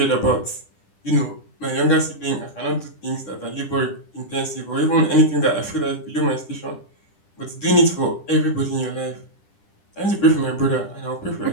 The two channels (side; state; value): right; late; 10 ms